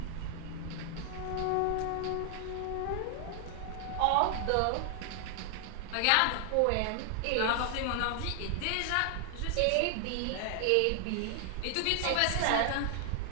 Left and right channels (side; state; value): both; different; correlation 0.00